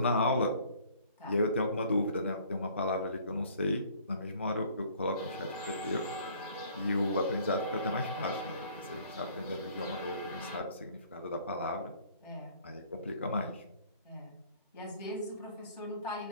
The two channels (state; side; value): inverted; both; correlation -0.56